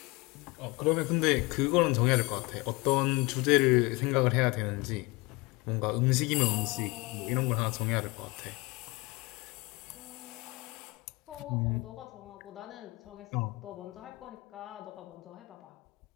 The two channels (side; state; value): right; quieter; 24.1 dB